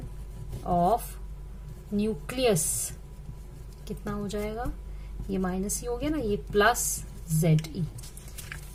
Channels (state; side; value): identical; both; correlation 1.00